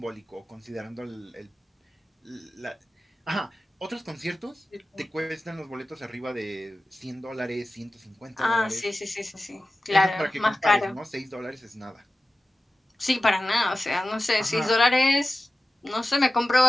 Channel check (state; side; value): normal; both; correlation 0.95